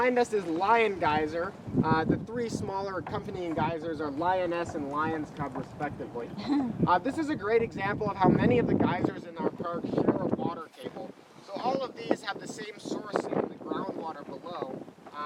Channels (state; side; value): identical; both; correlation 1.00